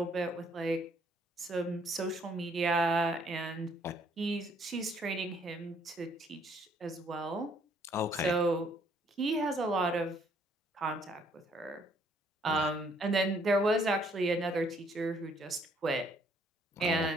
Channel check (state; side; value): normal; both; correlation 0.65